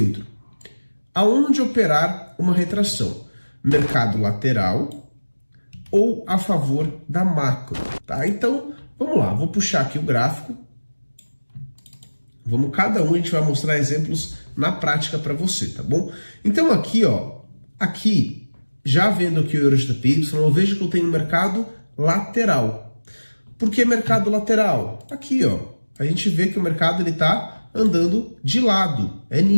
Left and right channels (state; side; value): inverted; both; correlation -1.00